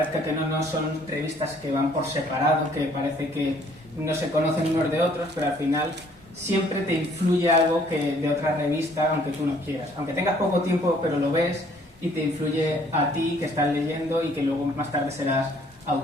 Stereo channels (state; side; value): normal; both; correlation 0.61